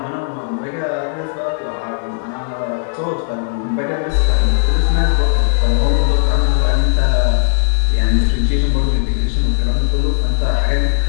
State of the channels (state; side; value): silent; right; 67 dB below the other